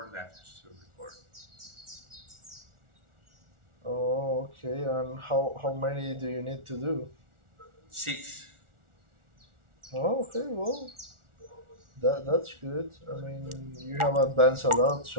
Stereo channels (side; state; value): left; late; 1.4 ms